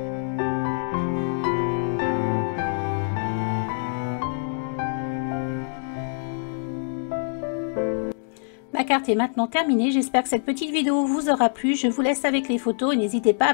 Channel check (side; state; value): right; silent; digital silence